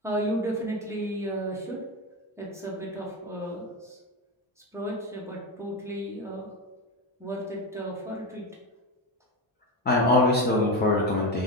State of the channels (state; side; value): normal; both; correlation 0.17